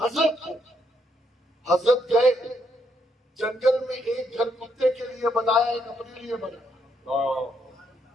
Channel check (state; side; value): normal; both; correlation 0.75